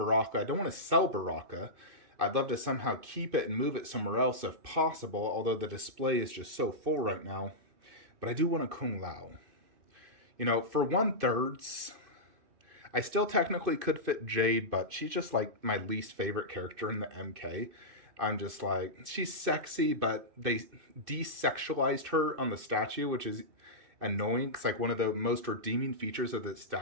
I don't want to sell Baraka. I'd love to somehow keep it and move it somewhere else if possible, although the display is just so full right now. But I do want a Kung Lao. For 1/3, I still technically could fit Jade, but she's just like my least favorite character in the MK. I'm just like, she's sexy, but they desexualized her on the statue, which is annoying, because one of the most redeeming features of the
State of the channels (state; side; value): late; left; 2.5 ms